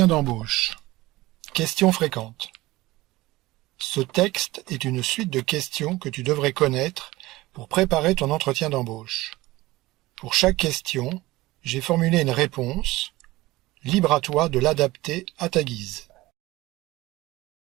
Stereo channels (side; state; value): left; quieter; 19.0 dB